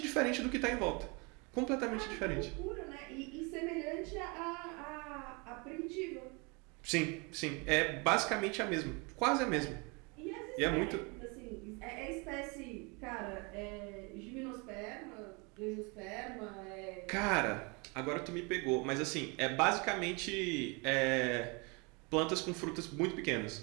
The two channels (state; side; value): quieter; left; 30.1 dB